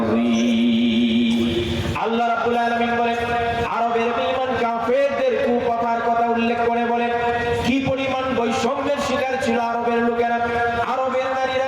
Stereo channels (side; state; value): both; identical; correlation 1.00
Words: আল্লাহ রাব্বুল আলামিন বলেন, আরবের বেঈমান কাফেরদের কুকথার কথা উল্লেখ করে বলেন কি পরিমাণ বৈষম্যের শিকার ছিল আরবের লোকেরা। আরবের